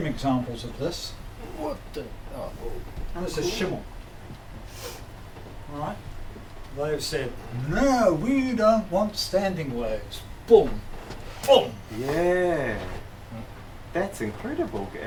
examples of this. What the? Oh. And this is Schimmel. Right? They've said, no, we don't want standing waves. Boom. Boom. Yeah. That's incredible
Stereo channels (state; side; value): identical; both; correlation 1.00